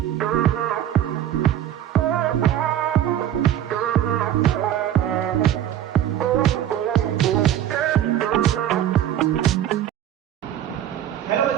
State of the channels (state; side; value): quieter; left; 11.2 dB